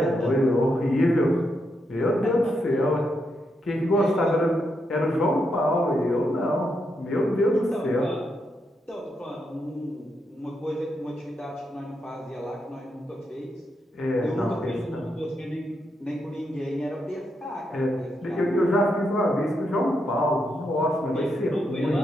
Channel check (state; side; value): normal; both; correlation 0.81